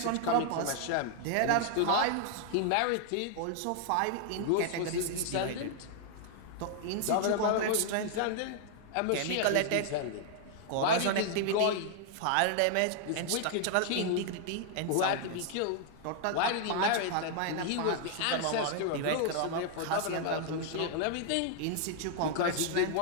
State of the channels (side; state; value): both; different; correlation 0.00